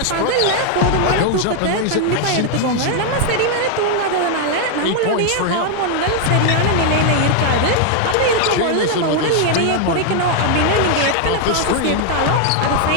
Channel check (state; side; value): different; both; correlation 0.00